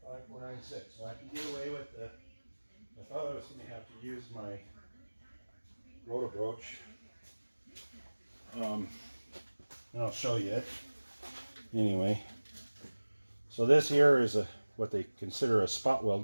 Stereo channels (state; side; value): inverted; both; correlation -1.00